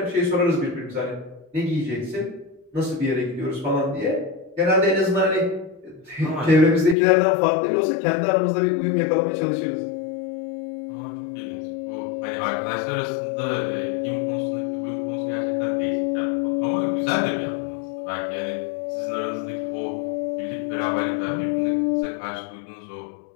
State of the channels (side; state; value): right; drops out; at 7.0 s